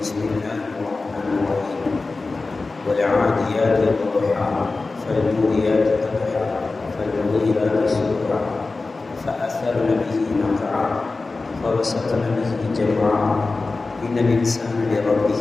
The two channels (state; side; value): quieter; right; 3.7 dB